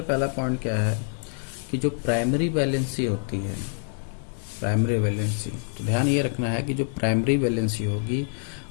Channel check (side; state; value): right; silent; digital silence